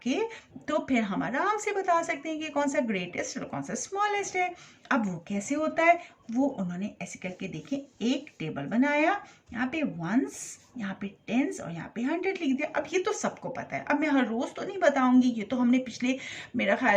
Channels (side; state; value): both; identical; correlation 1.00